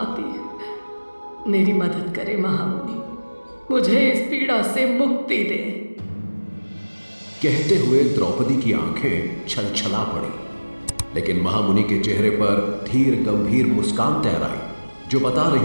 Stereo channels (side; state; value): both; inverted; correlation -1.00